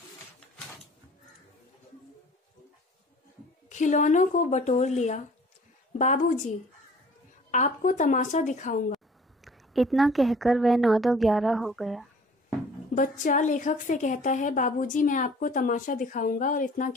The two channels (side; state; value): both; normal; correlation 0.50